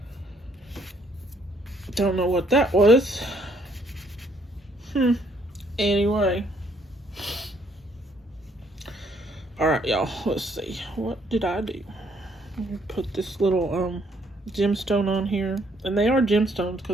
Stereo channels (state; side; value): normal; both; correlation 0.67